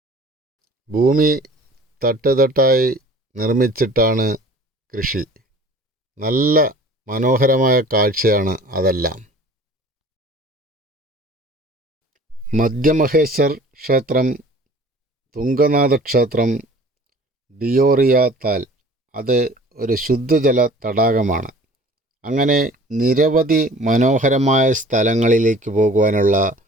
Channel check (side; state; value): both; normal; correlation 0.47